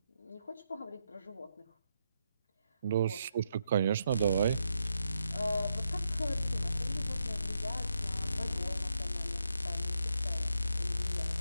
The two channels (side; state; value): both; inverted; correlation -0.82